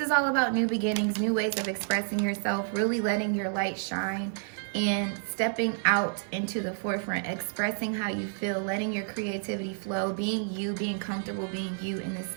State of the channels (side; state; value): left; silent; 58 dB below the other